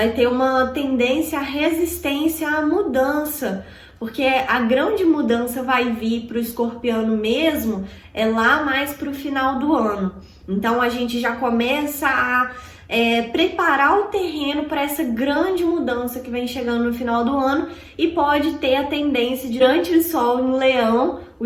ter uma tendência à resistência à mudança, porque a grande mudança vai vir para o escorpiano mesmo lá mais para o final do ano. Então a gente já começa a preparar o terreno para essa grande mudança que vem chegando no final do ano, e pode ter a tendência de, durante o Sol em Leão, o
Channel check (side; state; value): both; identical; correlation 1.00